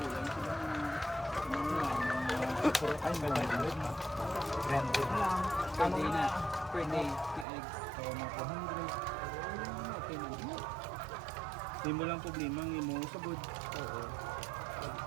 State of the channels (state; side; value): drops out; left; at 7.5 s